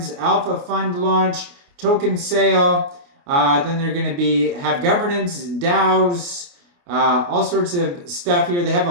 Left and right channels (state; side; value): late; left; 29 ms